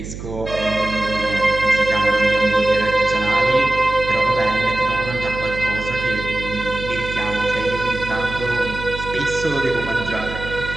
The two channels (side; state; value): right; noise; hum, 10 dB below the sound